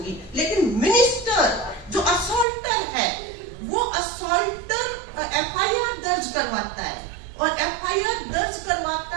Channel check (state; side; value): drops out; left; at 2.5 s